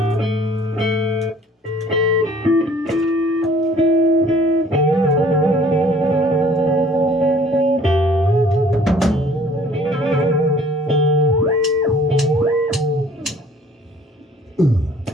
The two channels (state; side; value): normal; both; correlation 0.55